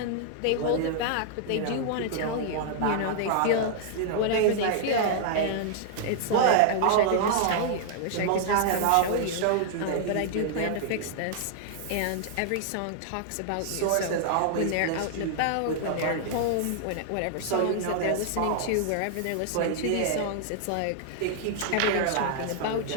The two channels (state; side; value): different; both; correlation -0.01